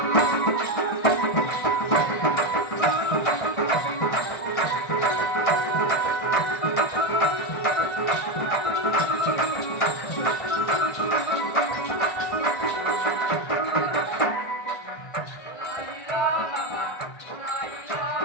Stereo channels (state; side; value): late; right; 1.5 ms